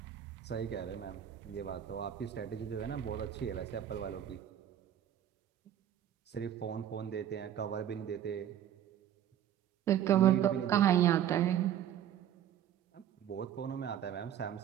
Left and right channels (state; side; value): quieter; left; 10.4 dB